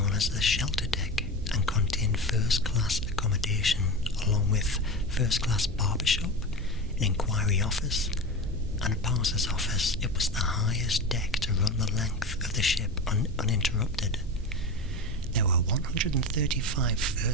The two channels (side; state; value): both; normal; correlation 0.25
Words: as the shelter deck and contained first-class accommodation along with first-class barbershop, an inquiry office and a parser's office. It was the highest deck to run the length of the ship uninterrupted. There were 135